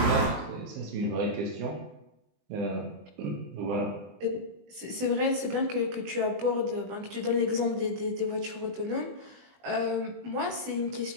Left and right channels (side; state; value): left; late; 20 ms